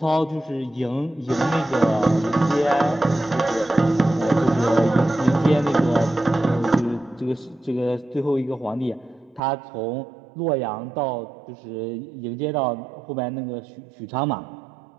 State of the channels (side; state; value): left; drops out; at 9.4 s